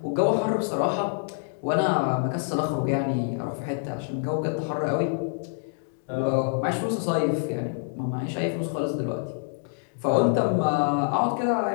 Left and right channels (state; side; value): silent; right; digital silence